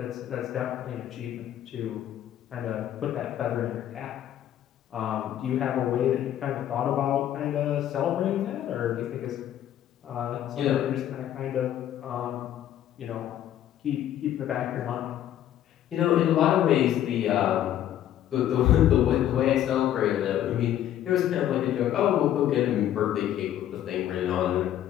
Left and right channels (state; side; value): quieter; right; 11.5 dB